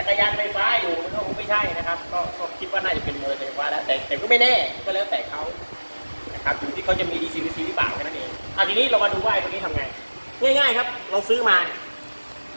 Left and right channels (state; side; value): inverted; both; correlation -1.00